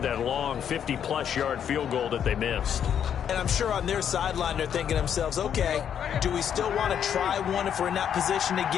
that long 50-plus yard field goal that they missed. And I'm sure on their sideline they're thinking to themselves, okay, do we still want to try one if we're in that position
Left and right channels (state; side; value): quieter; right; 8.7 dB